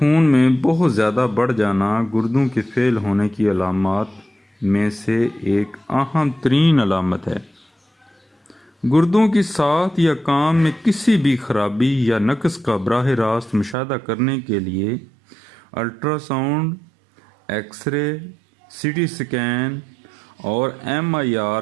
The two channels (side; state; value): left; drops out; at 13.8 s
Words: میں بہت زیادہ بڑھ جانا گردوں کے فیل ہونے کی علامات میں سے ایک اہم ترین علامت ہے۔ گردوں کی ساخت یا کام میں کسی بھی خرابی یا نقص کا براہ راست مشاہدہ کرنے کے لیے ultra sound, X ray, CT scan اور MIR